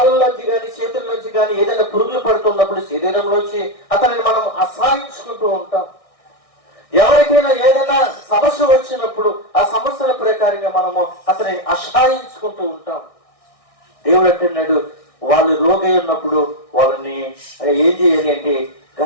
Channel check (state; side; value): late; right; 1.6 ms